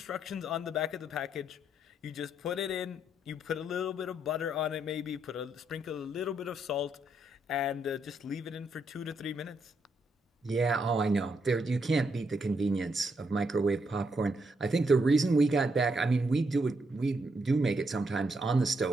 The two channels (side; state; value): both; normal; correlation 0.77